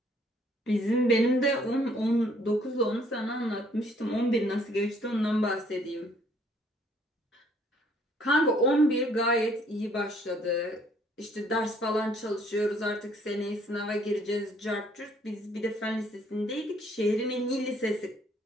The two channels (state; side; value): normal; both; correlation 0.63